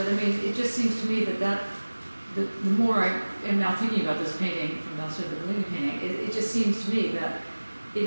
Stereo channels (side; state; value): both; inverted; correlation -1.00